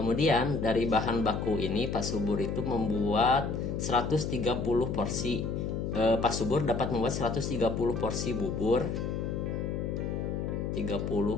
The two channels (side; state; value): left; noise; hum, 2 dB below the sound